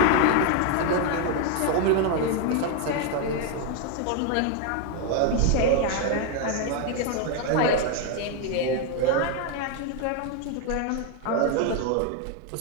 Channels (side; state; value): both; different; correlation 0.01